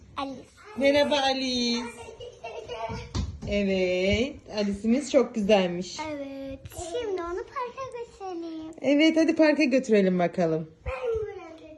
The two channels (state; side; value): identical; both; correlation 1.00